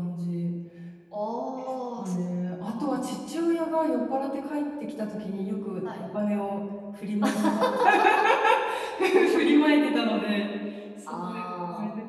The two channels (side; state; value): both; identical; correlation 1.00